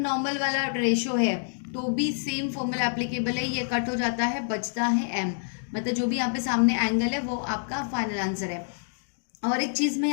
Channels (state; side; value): silent; right; digital silence